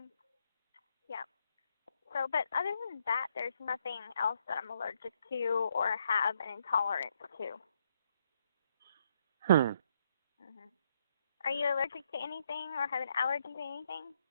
Yeah. So, but other than that, there's nothing else that I'm allergic to or have an intolerance to. Are you allergic to anything or have an allergy to anything?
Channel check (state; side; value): inverted; both; correlation -0.74